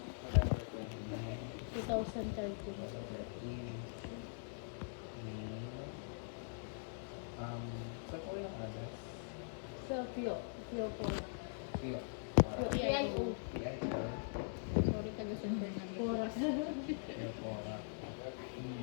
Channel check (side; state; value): right; silent; digital silence